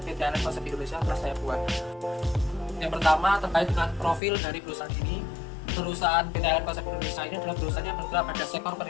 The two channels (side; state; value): right; drops out; at 4.2 s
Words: PT Allen Konsep Indonesia telah saya buat. Yang pertama terkait dengan profil dari perusahaan ini. Perusahaan PT Allen Konsep Indonesia ini adalah perusahaan yang bergerak pada sektor